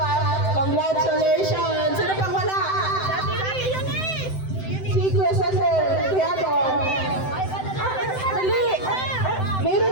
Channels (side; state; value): right; late; 7.8 ms